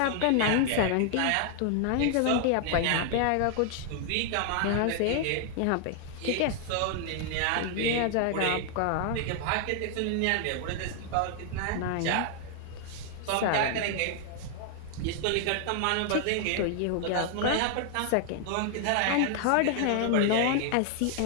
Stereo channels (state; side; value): different; both; correlation 0.00